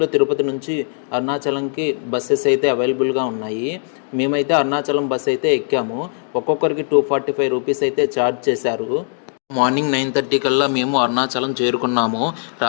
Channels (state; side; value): silent; right; 66 dB below the other